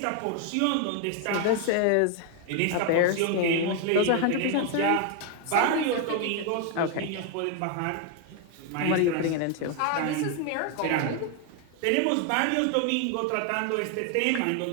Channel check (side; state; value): both; different; correlation 0.01